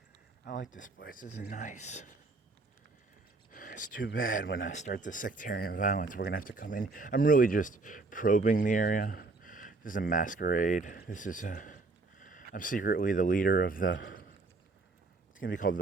I like this place, this is nice. It's too bad when I start the sectarian violence, we're gonna have to come in. I'm really just probing the area. This is a masquerade. I'm secretly the leader of it's gonna be called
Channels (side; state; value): left; quieter; 3.6 dB